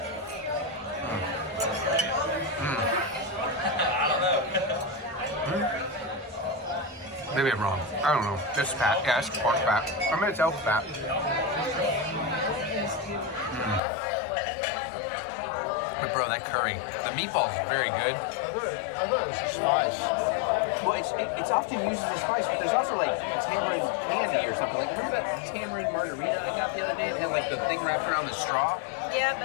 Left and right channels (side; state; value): right; drops out; at 13.8 s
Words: Maybe I'm wrong. I don't know. It's fat. Yeah, it's pork fat. I mean, it's elk fat. But bro, that curry, the meatball is very good. I thought it was a spice. Well, it's often used as a spice, but there's also like a tamarind candy or something. Like, remember that tamarind margarita I got the other day? It had like the thing wrapped around the straw. Yeah,